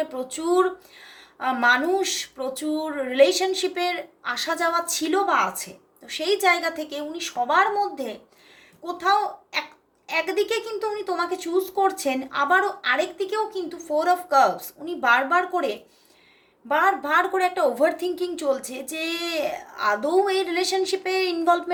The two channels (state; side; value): identical; both; correlation 1.00